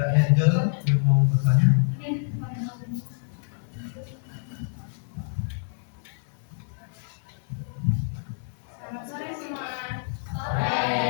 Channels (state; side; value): silent; right; 60 dB below the other